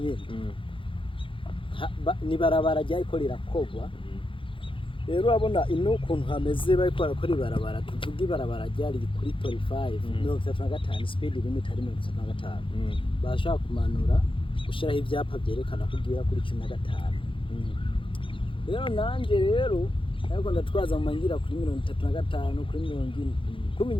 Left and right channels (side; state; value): right; late; 0.25 ms